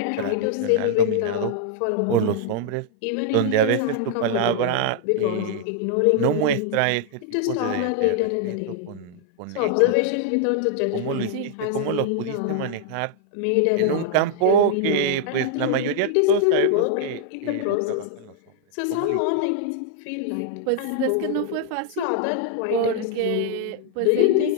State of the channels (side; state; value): both; different; correlation -0.01